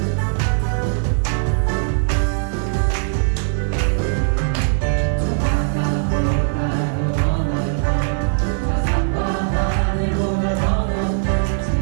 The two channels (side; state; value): left; silent; digital silence